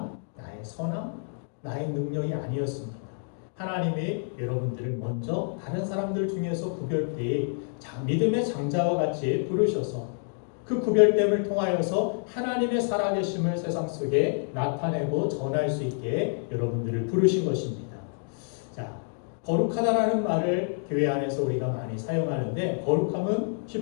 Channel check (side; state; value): right; silent; 57 dB below the other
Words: 나의 선함, 나의 능력이 아니었습니다. 하나님이 여러분들을 먼저 다른 사람들 중에서 구별되이 믿음의 장자와 같이 부르셔서 그 구별됨을 통하여서 하나님의 살아계심을 세상 속에 나타내고 전할 수 있게 여러분들을 부르신 것입니다. 자, 거룩하다라는 말을 교회 안에서 우리가 많이 사용하는데, 거룩함은